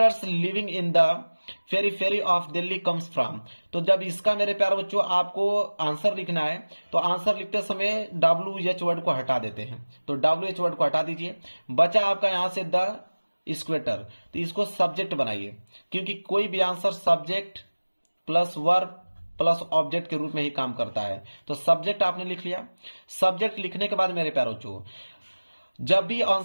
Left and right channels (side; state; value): both; inverted; correlation -1.00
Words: living in the periphery of Delhi comes from. तो जब इसका मेरे प्यारे बच्चों आपको आंसर लिखना है तो आंसर लिखते समय WH वर्ड को हटा देते हैं, तो WH वर्ड को हटा दीजिए। बचा आपका यहां से द स्क्वेटर, तो इसको सब्जेक्ट बनाइए, क्योंकि कोई भी answer subject plus verb plus object के रूप में ही काम करता है। तो सब्जेक्ट आपने लिख लिया। सब्जेक्ट लिखने के बाद मेरे प्यारे बच्चों जब भी